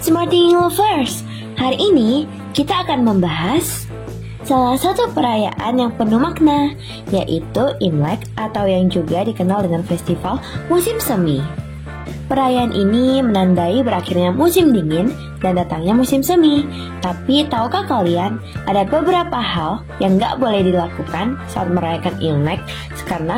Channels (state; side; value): identical; both; correlation 1.00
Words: Thinking Lovers. Hari ini kita akan membahas salah satu perayaan yang penuh makna, yaitu Imlek atau yang juga dikenal dengan festival musim semi. Perayaan ini menandai berakhirnya musim dingin dan datangnya musim semi. Tapi tahukah kalian, ada beberapa hal yang gak boleh dilakukan saat merayakan Imlek karena